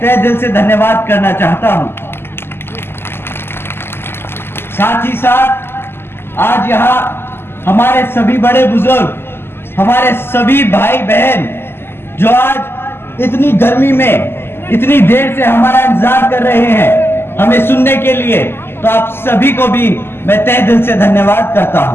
तहे दिल से धन्यवाद करना चाहता हूं। साथ ही साथ आज यहां हमारे सभी बड़े बुजुर्ग, हमारे सभी भाई बहन जो आज इतनी गर्मी में इतनी देर से हमारा इंतजार कर रहे हैं हमें सुनने के लिए, तो आप सभी को भी मैं तहे दिल से धन्यवाद करता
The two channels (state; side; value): late; right; 0.11 ms